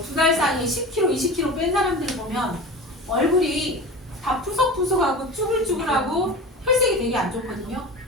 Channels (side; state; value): both; normal; correlation 0.32